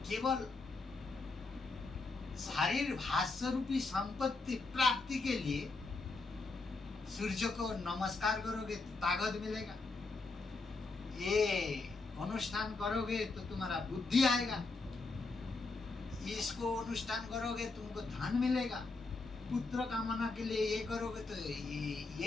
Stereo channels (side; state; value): right; quieter; 3.7 dB